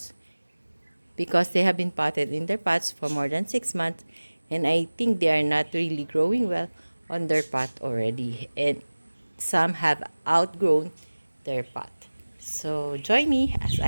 because they have been potted in their pots for more than 6 months, and I think they are not really growing well on their pot already, and some have outgrown their pot. So join me as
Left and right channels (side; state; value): both; inverted; correlation -1.00